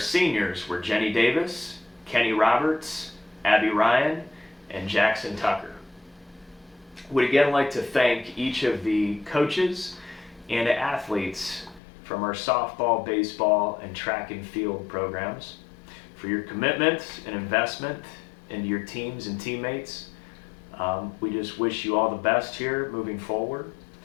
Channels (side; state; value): right; drops out; at 11.8 s